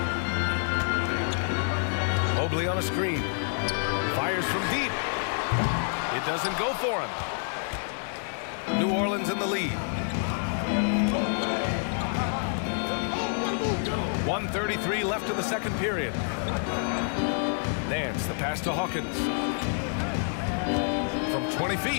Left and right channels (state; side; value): silent; right; 59 dB below the other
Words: Mobley on a screen. Fires from deep. It doesn't go for him. New Orleans in the lead. 1:33 left in the second period. Nance, the pass to Hawkins. From 20